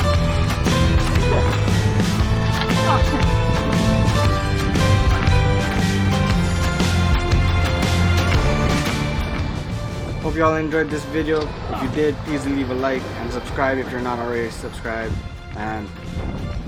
Hope you all enjoyed this video. If you did, please leave a like and subscribe if you're not already subscribed. and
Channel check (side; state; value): both; identical; correlation 1.00